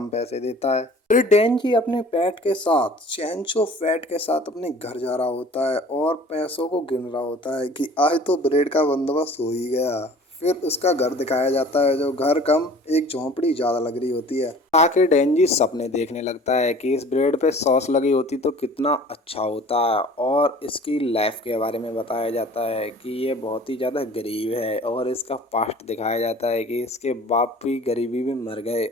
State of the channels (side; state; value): both; normal; correlation 0.47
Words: पैसे देता है। फिर डेंजी अपने पेट के साथ, चेंचो फैट के साथ, अपने घर जा रहा होता है और पैसों को गिन रहा होता है कि आज तो ब्रेड का बंदोबस्त हो ही गया। फिर उसका घर दिखाया जाता है, जो घर कम एक झोंपड़ी ज्यादा लग रही होती है। आखिर डेंजी सपने देखने लगता है कि इस ब्रेड पे सॉस लगी होती तो कितना अच्छा होता। और इसकी लाइफ के बारे में बताया जाता है कि ये बहुत ही ज़्यादा गरीब है और इसका पास्ट दिखाया जाता है कि इसके बाप भी गरीबी में मर गए